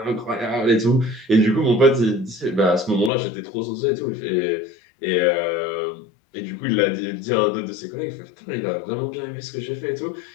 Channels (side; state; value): right; drops out; at 3.1 s